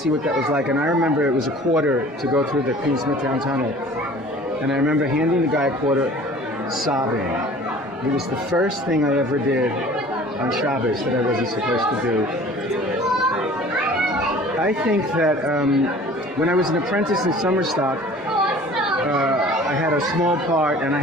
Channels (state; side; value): normal; both; correlation 0.47